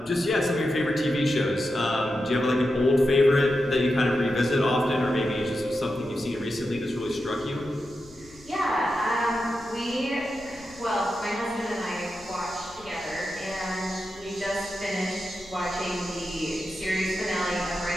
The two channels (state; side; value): noise; left; rumble, 24 dB below the sound